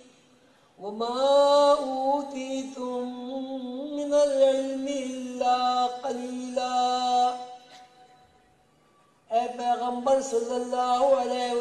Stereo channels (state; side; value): identical; both; correlation 1.00